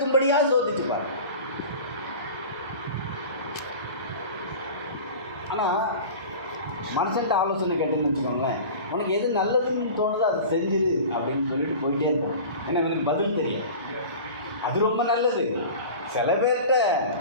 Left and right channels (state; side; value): inverted; both; correlation -0.36